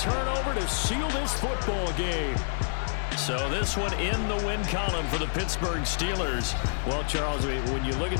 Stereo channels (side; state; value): right; silent; digital silence